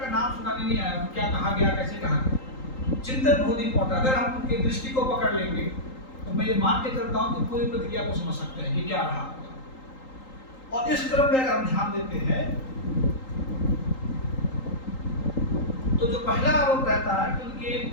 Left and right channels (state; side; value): late; right; 3.8 ms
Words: नाम सुनाने नहीं आया, क्या कहा गया, कैसे कहा गया। चिंतन बहुत इंपॉर्टेंट, अगर हम उनके दृष्टि को पकड़ लेंगे तो मैं ये मान के चलता हूँ कि पूरी प्रक्रिया को समझ सकते हैं कि क्या रहा। और इस क्रम में अगर हम ध्यान देते हैं तो जो पहला आरोप रहता है कि उनके